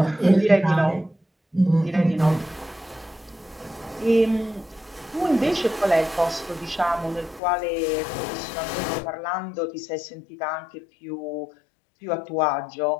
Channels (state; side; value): drops out; right; at 7.4 s